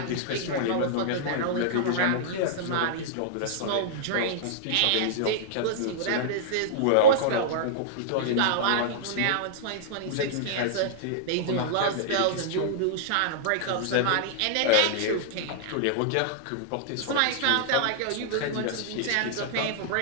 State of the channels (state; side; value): different; both; correlation -0.02